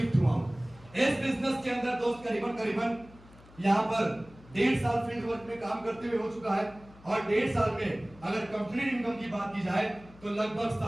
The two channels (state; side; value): noise; left; hum, 23 dB below the sound